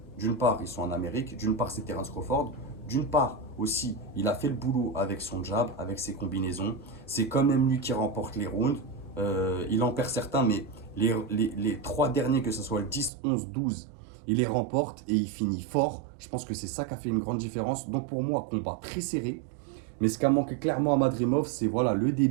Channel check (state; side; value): drops out; left; at 13.1 s